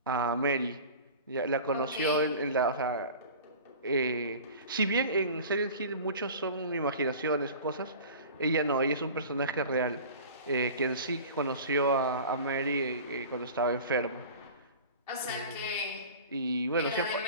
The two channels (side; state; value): both; inverted; correlation -0.39